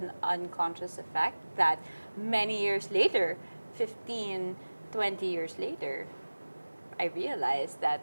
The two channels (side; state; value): both; inverted; correlation -1.00